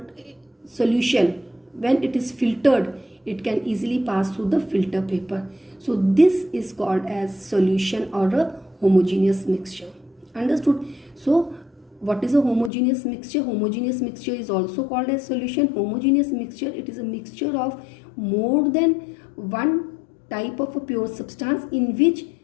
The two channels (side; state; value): right; drops out; at 12.7 s